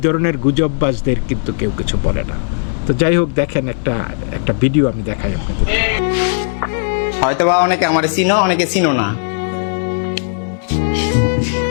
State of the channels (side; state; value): right; silent; digital silence